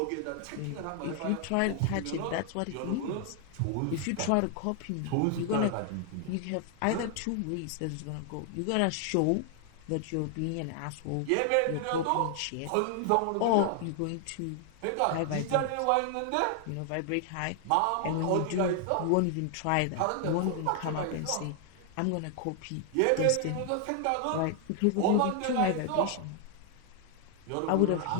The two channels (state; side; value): different; both; correlation 0.00